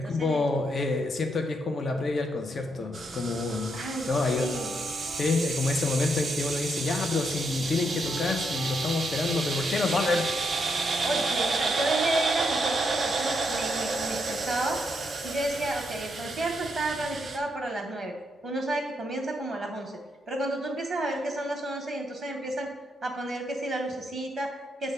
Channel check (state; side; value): normal; both; correlation 0.79